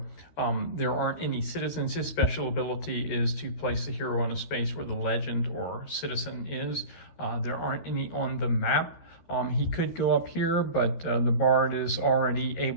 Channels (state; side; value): late; right; 13 ms